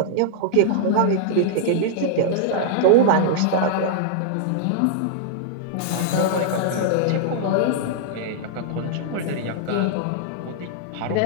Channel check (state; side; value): different; both; correlation -0.01